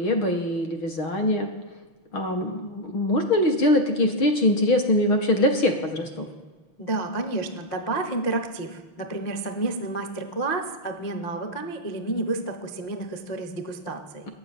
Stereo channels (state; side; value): late; right; 6.3 ms